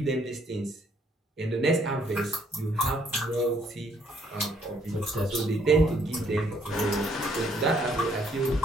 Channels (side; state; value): both; normal; correlation 0.66